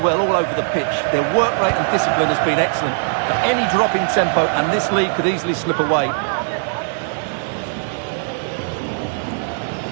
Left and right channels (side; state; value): left; silent; digital silence